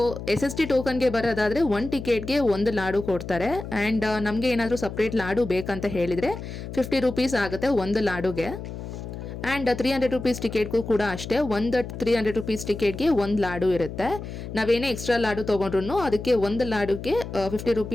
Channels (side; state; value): left; noise; hum, 9 dB below the sound